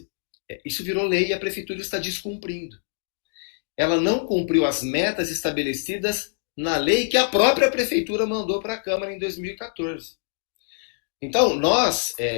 isso virou lei e a prefeitura está descumprindo. Ela não cumpriu as metas estabelecidas na lei que a própria prefeitura mandou para a Câmara em 2014. Então, nós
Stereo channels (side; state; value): right; silent; digital silence